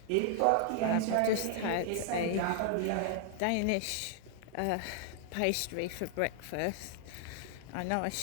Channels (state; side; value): different; both; correlation 0.00